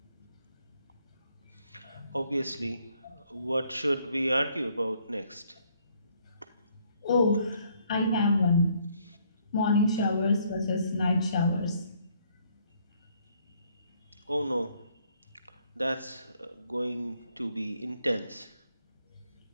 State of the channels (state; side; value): inverted; both; correlation -0.67